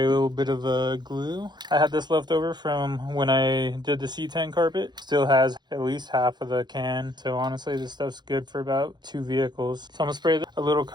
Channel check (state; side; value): late; left; 0.21 ms